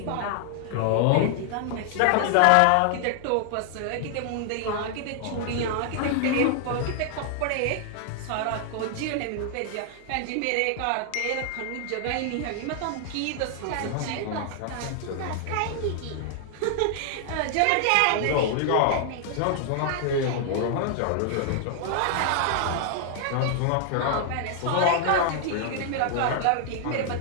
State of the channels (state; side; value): different; both; correlation 0.00